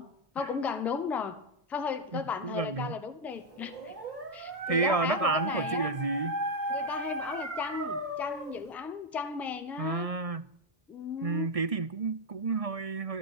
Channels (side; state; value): left; late; 1.6 ms